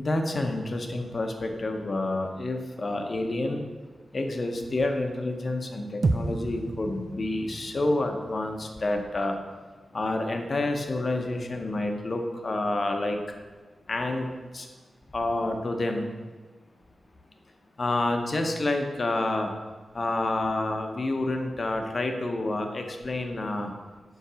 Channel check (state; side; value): normal; both; correlation 0.93